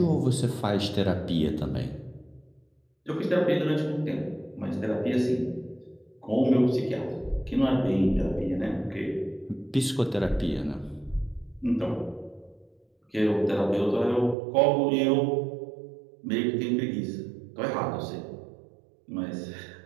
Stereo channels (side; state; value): left; drops out; at 14.4 s